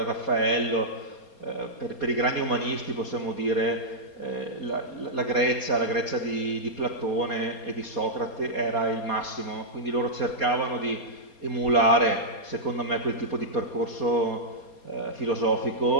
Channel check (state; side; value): late; right; 4.3 ms